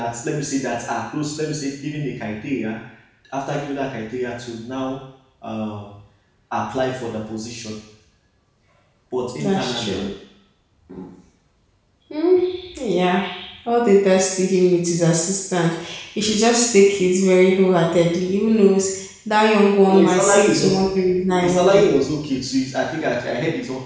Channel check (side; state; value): both; identical; correlation 1.00